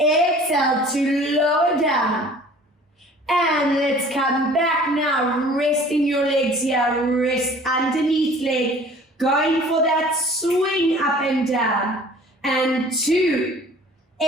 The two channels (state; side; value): normal; both; correlation 0.49